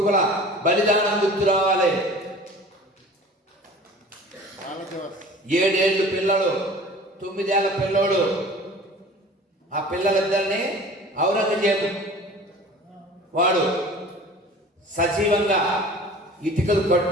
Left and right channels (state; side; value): normal; both; correlation 0.43